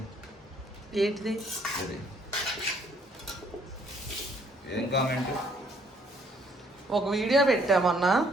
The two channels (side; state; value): both; normal; correlation 0.64